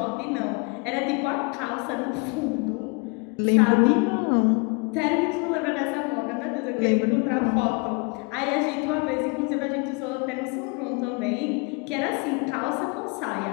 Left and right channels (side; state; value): right; quieter; 30.1 dB